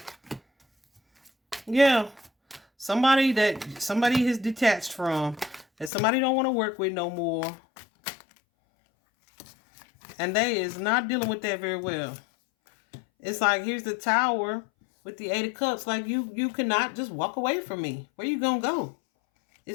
Yeah. Somebody is detached from. That somebody don't want to work with no more. And they is not dealing with that very well. It's like, here's the Tower with the Eight of Cups. Like, you cannot just walk away from me. Where you gonna go?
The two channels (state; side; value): drops out; right; at 5.9 s